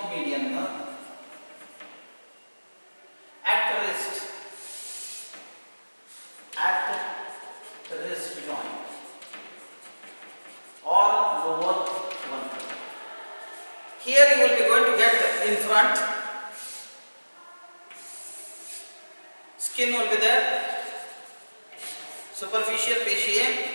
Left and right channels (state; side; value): inverted; both; correlation -1.00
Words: median nerve at wrist joint or lower one. Here you will be going to get in front, skin will be there, superficial fascia,